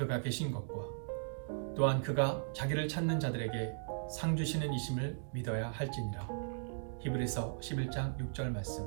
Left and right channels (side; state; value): left; silent; digital silence